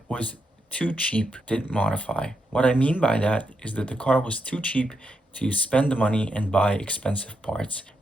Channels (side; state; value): both; normal; correlation 0.83